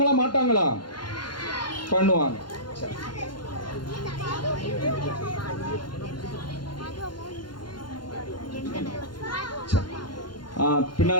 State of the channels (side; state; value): right; late; 0.71 ms